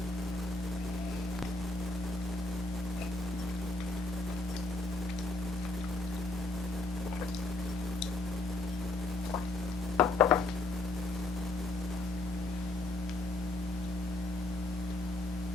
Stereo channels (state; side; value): quieter; right; 3.0 dB